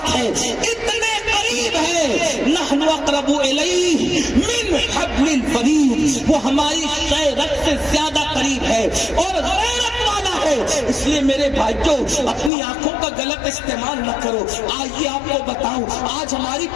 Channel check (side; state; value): right; drops out; at 12.5 s